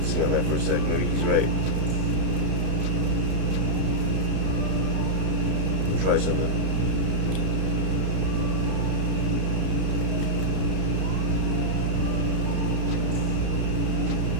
on that for a second. Maybe he's right. I'll try something.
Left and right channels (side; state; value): left; late; 32 ms